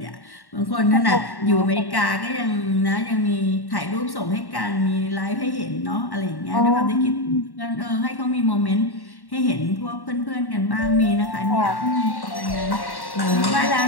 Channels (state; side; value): late; right; 1.1 ms